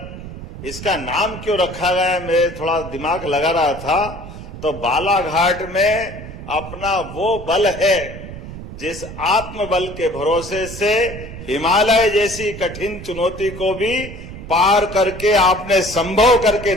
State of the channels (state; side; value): noise; right; rumble, 12 dB below the sound